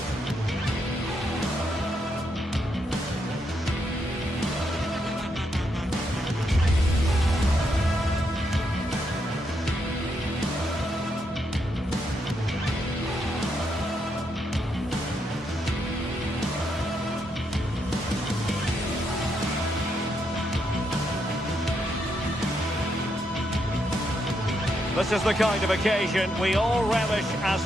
This is the kind of occasion we all relish as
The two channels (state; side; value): normal; both; correlation 0.79